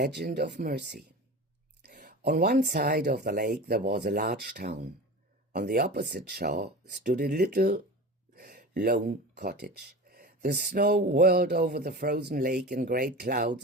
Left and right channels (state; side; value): normal; both; correlation 0.32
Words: of mercy. On one side of the lake there was a large town. On the opposite shore stood a little lone cottage. The snow whirled over the frozen lake in great clouds,